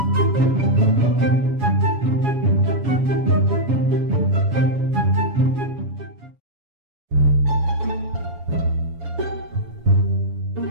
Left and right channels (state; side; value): late; left; 7.1 ms